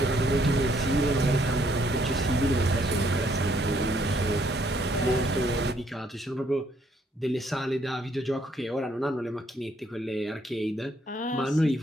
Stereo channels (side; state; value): both; normal; correlation 0.69